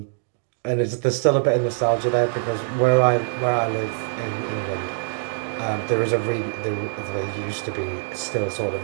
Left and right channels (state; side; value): silent; left; digital silence